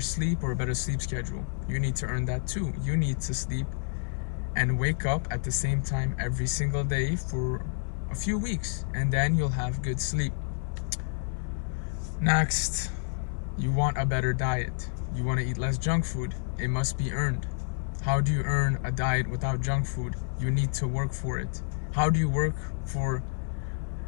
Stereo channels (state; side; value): silent; right; digital silence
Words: sleep or a better sleep schedule? You need to earn that too. You need to sleep and wake up at the same time every single day for a few weeks, and then you'll have good sleep. Next, you want a better diet. You want to eat less junk food. It must be earned. How do you earn a diet without junk food? You need to work for it. How do you work for